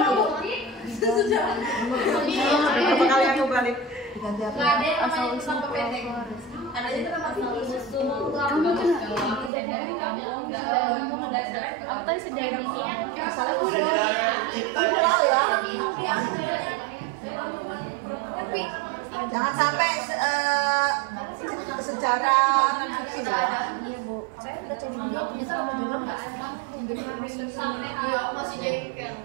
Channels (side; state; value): left; drops out; at 9.5 s